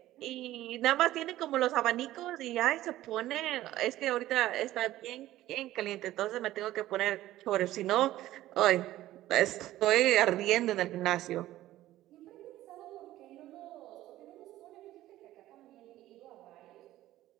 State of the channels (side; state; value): left; quieter; 14.9 dB